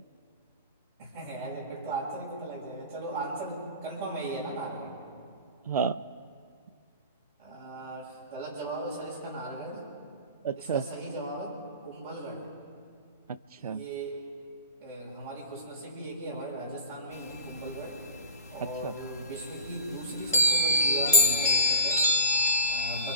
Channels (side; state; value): both; inverted; correlation -0.31